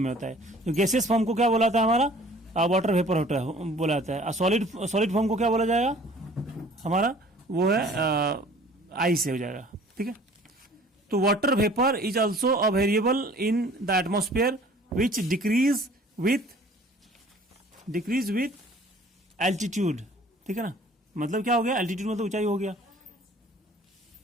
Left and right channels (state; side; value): normal; both; correlation 0.51